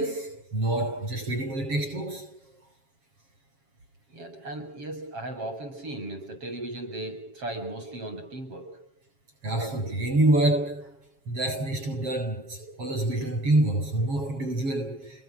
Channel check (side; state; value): left; late; 7.3 ms